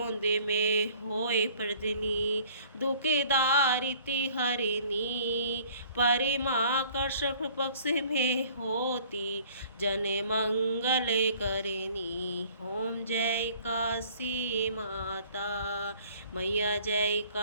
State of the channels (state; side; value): inverted; both; correlation -0.54